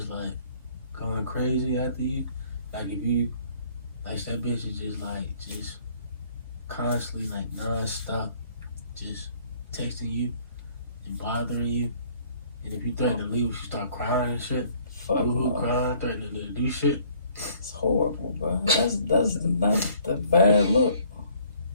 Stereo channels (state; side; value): inverted; both; correlation -0.59